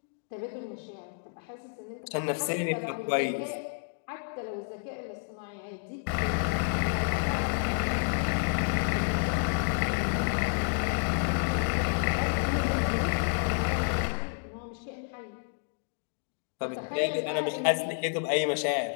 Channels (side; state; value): right; silent; digital silence